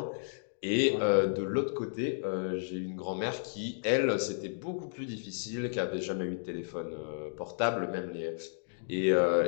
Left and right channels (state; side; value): silent; right; digital silence